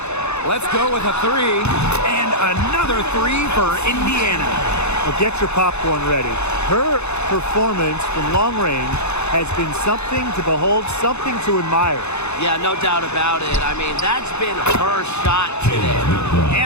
Let's go with a 3. And another 3 for Indiana. Well, get your popcorn ready. Her performance from long range has been something to behold, something to admire. Yeah, no doubt about it. I mean, that's been her shot today.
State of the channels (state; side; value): late; right; 0.81 ms